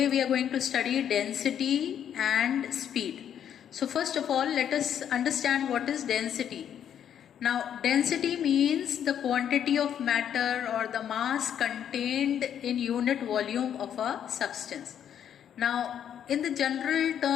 we are going to study density and speed. So first of all, let us understand what is density. Now density means the quantity of matter or the mass contained in unit volume of a substance. Now in the general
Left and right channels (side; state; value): right; quieter; 9.3 dB